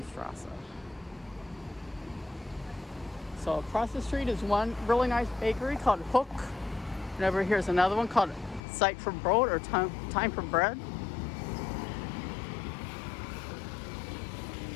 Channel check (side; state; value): right; drops out; at 8.6 s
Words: So across the street is one really nice bakery called Hook. And over here is another one called Zeit for Brot, or Time for Bread.